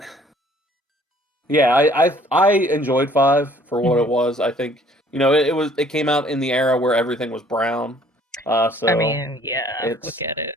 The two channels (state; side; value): normal; both; correlation 0.57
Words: yeah, I enjoyed 5 for what it was. I think it came out in the era where everything was brown. So I mean, yeah, it's look at